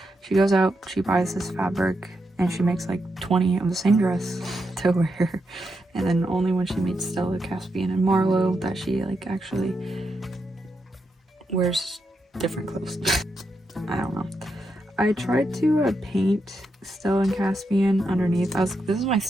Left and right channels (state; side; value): normal; both; correlation 0.84